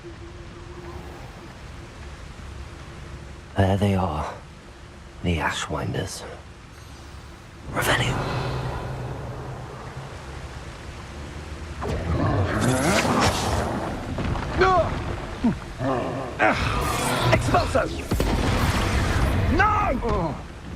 There they are. The Ashwinders. Revelio. Expulso! No!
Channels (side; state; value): both; identical; correlation 1.00